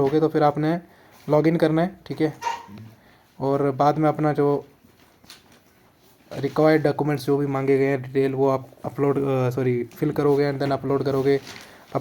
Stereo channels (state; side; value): identical; both; correlation 1.00